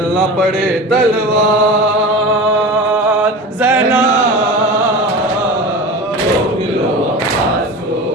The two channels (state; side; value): normal; both; correlation 0.31